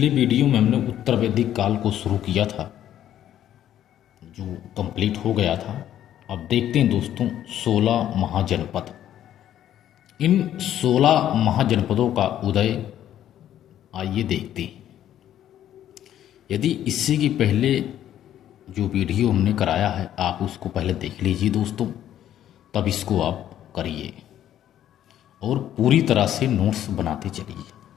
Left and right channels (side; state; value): right; quieter; 11.3 dB